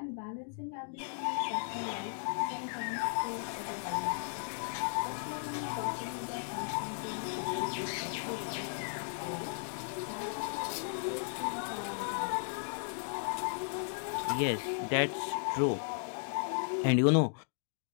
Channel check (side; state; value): right; silent; digital silence